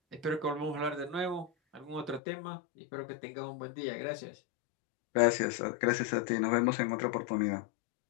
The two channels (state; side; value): drops out; right; at 2.2 s